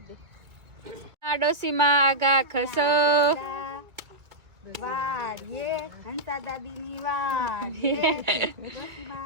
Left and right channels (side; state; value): left; late; 2.6 ms